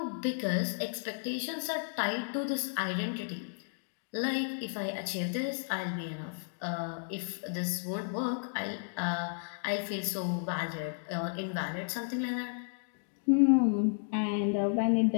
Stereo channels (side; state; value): right; silent; digital silence